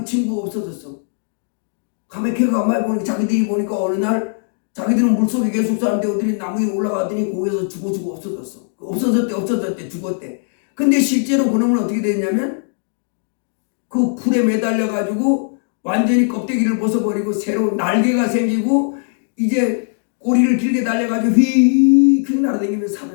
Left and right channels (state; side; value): silent; right; 67 dB below the other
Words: 친구가 없어졌어. 가만히 가만히 보니까 자기들이 보니까 어느 날 자기들은 물속에 계속 사는데 어디 나무 위에 올라가더니 거기서 죽어 없어졌어. 없어졌대 죽었대. 근데 실제로 그놈은 어떻게 됐냐면 그 풀에 매달려가지고 완전히 껍데기를 벗어버리고 새로운 날개가 생기고 이제 꼬리를 길게 달려가지고 휙휙 날아다니면서